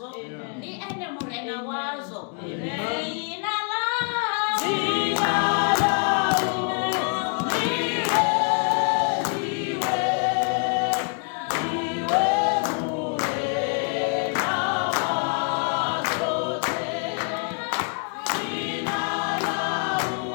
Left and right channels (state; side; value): quieter; right; 39.3 dB